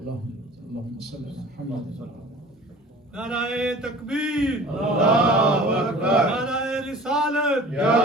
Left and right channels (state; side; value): normal; both; correlation 0.43